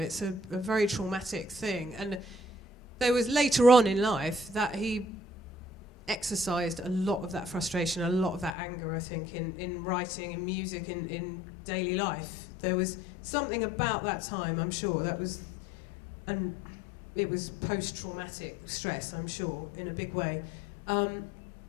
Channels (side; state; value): right; drops out; at 8.6 s